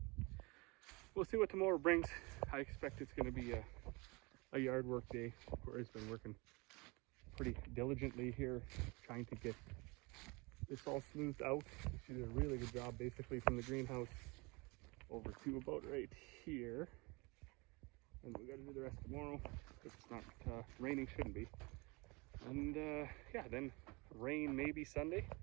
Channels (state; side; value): quieter; left; 26.7 dB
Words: we'll see what tomorrow brings. I expect it's going to be a yard work day. Corey's been working pretty diligently here, trying to get this all smoothed out. She did a really good job, basically from the greenhouse over to about right here. And we got to do the rest tomorrow if it's not raining. Shouldn't be. And yeah, then rain maybe Sunday,